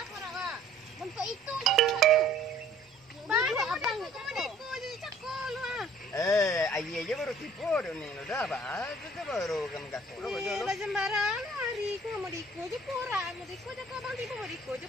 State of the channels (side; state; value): both; normal; correlation 0.55